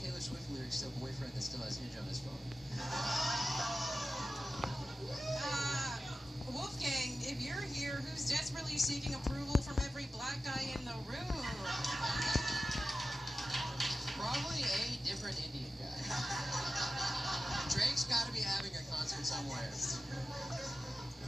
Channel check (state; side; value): normal; both; correlation 0.94